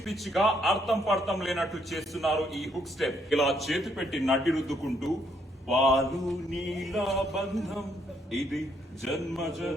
పిచ్చిగా అర్థం పడతం లేనట్టు చేస్తున్నారు ఈ హుక్ స్టెప్. ఇలా చేతి పెట్టి నడ్డి రుద్దుకుంటూ పాలు నీల బంధం ఇది జన్మ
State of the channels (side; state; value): both; normal; correlation 0.72